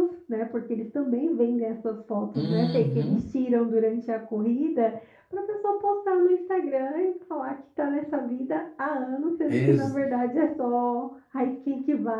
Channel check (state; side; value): identical; both; correlation 1.00